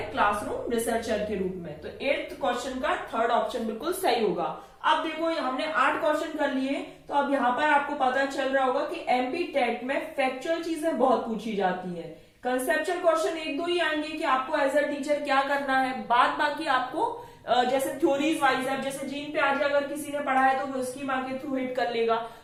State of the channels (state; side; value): identical; both; correlation 1.00